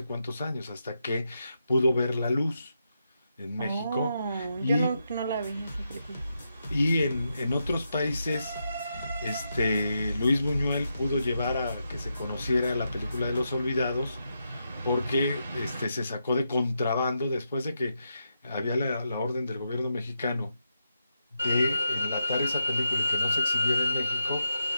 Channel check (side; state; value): both; inverted; correlation -0.85